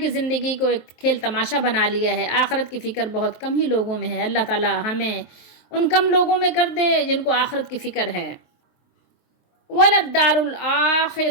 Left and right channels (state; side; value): late; right; 23 ms